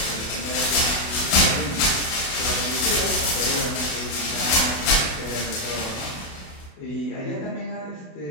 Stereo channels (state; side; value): late; right; 28 ms